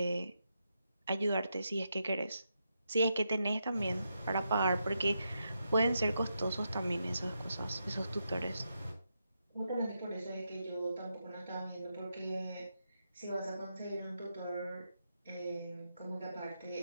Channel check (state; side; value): inverted; both; correlation -0.84